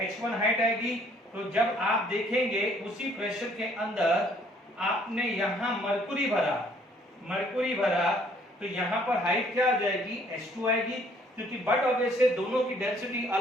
H1 हाइट आएगी, तो जब आप देखेंगे उसी प्रेशर के अंदर आपने यहाँ मरकुरी भरा तो यहाँ पर हाइट क्या आ जाएगी, H2 आएगी, क्योंकि बट ऑब्वियसली दोनों की डेंसिटी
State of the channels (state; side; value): normal; both; correlation 0.62